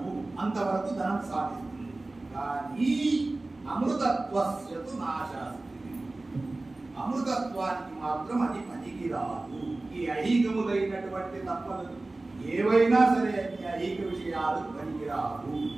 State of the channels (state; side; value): quieter; left; 3.0 dB